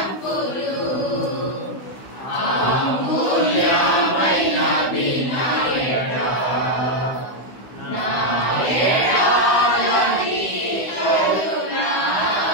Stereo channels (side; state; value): right; late; 16 ms